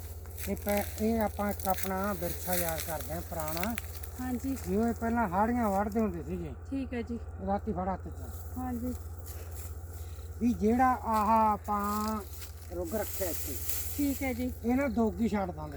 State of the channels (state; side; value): identical; both; correlation 1.00